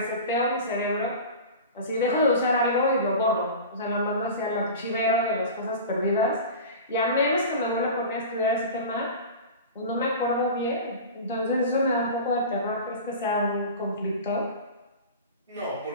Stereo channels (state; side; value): inverted; both; correlation -0.32